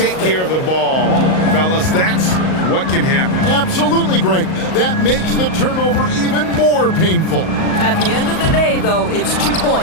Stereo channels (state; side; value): late; right; 38 ms